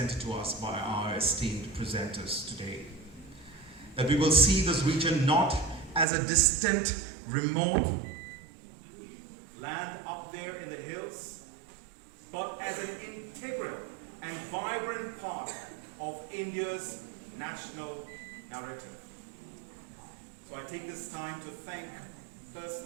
to us by our esteemed presenters today. That we will see this region not as a distant, remote land up there in the hills, but as an integral and vibrant part of India's national narrative. So I take this time to thank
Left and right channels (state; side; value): drops out; left; at 6.1 s